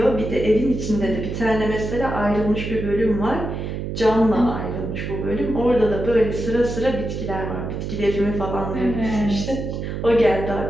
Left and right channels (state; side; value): noise; right; hum, 5 dB below the sound